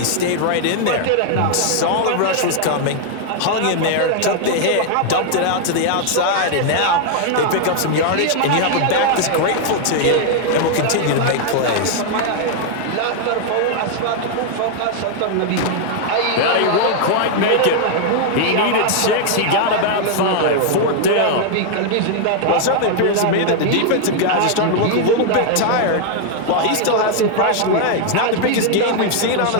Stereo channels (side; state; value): both; different; correlation 0.00